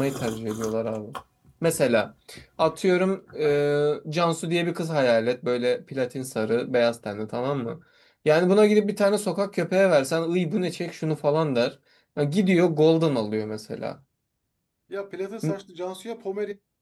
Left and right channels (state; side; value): identical; both; correlation 1.00